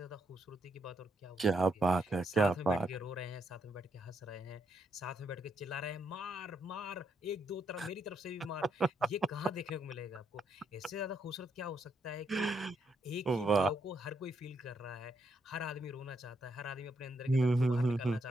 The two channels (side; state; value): both; normal; correlation 0.77